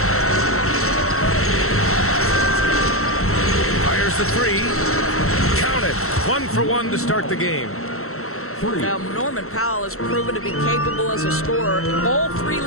Fires the 3. Count it. 1 for 1 to start the game. Now, Norman Powell has proven to be capable as a scorer. All 3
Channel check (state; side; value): late; right; 0.63 ms